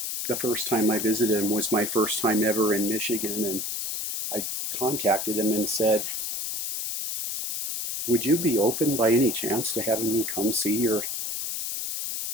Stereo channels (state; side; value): noise; left; hiss, 3 dB below the sound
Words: the first time I visited them was my first time ever in Michigan, and I contacted him and said, would you be open by any chance to having me come see your